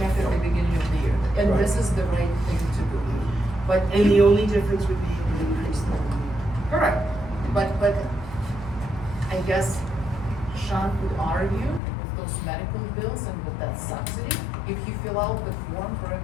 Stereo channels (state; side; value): drops out; right; at 11.8 s